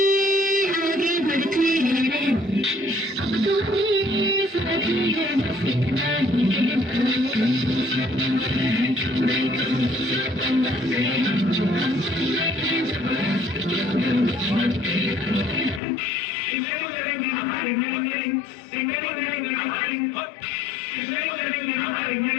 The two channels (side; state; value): right; drops out; at 15.8 s